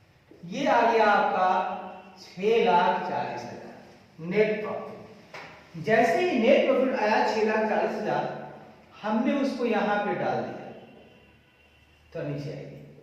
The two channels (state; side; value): identical; both; correlation 1.00